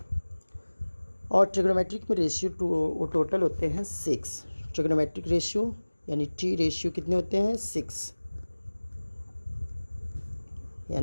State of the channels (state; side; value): inverted; both; correlation -1.00